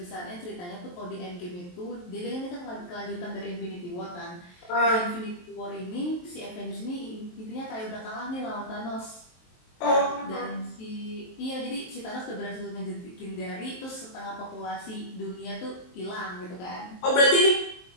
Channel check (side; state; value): right; late; 23 ms